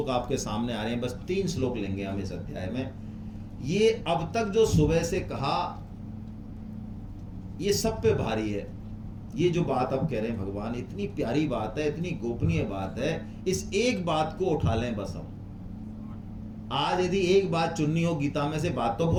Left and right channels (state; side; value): identical; both; correlation 1.00